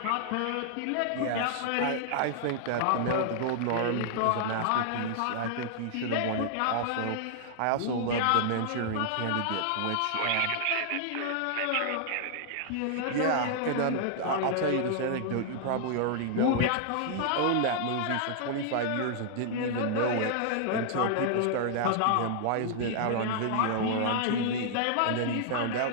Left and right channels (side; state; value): both; different; correlation -0.01